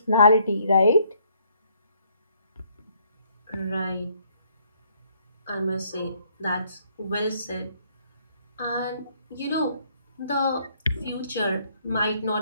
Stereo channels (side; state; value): both; inverted; correlation -0.67